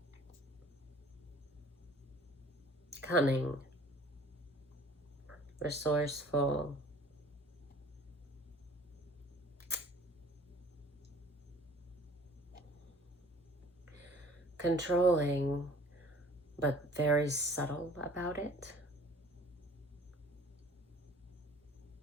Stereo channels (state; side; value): normal; both; correlation 0.50